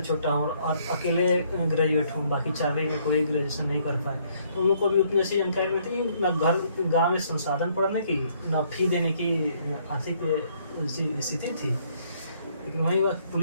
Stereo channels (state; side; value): inverted; both; correlation -0.67